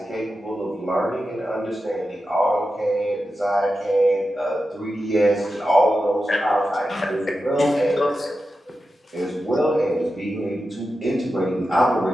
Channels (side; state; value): both; normal; correlation 0.91